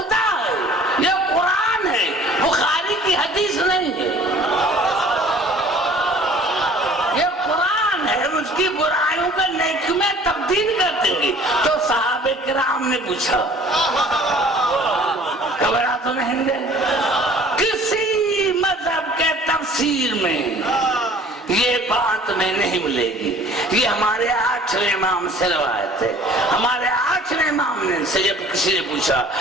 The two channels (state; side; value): normal; both; correlation 0.50